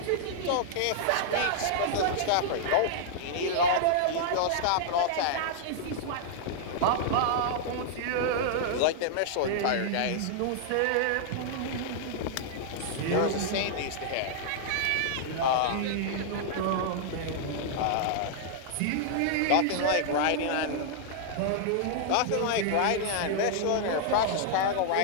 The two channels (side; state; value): both; different; correlation -0.01